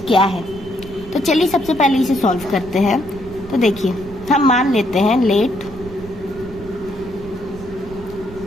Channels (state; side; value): noise; right; rumble, 16 dB below the sound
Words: क्या है। तो चलिए सबसे पहले इसे सॉल्व करते हैं। तो देखिए, हम मान लेते हैं लेट